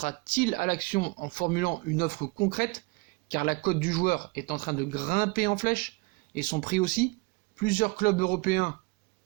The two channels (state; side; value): quieter; left; 25.9 dB